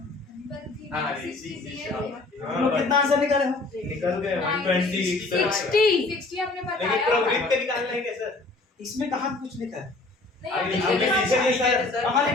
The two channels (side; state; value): right; quieter; 3.3 dB